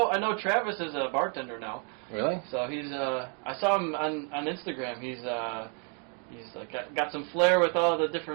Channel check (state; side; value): quieter; left; 39.2 dB